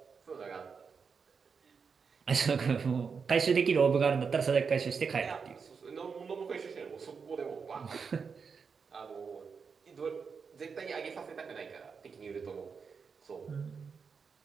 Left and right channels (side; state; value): left; quieter; 5.7 dB